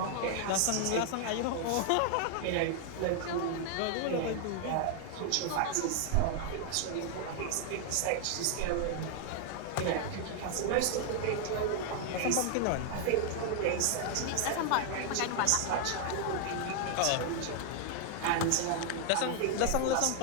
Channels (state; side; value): different; both; correlation 0.00